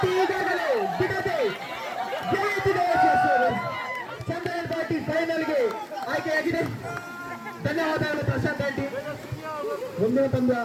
ಈಗಾಗಲೇ ಬಿಡದೆ ಜಯಿಸಿದೆ ಯಶಸ್ವಿ ಚಂದ್ರನ್ ಪಾರ್ಟಿ ಫೈನಲ್ಗೆ ಆಯ್ಕೆಯಾಗಿದೆ ಧನ್ಯವಾದಗಳು ಪ್ರಶಾಂತ್ ಆಂಟಿ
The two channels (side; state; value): both; identical; correlation 1.00